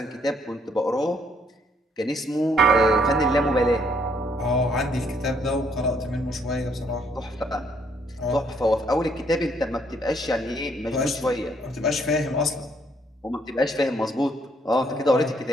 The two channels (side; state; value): both; normal; correlation 0.68